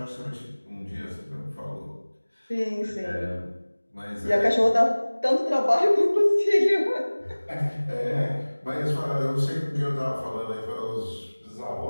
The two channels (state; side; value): inverted; both; correlation -1.00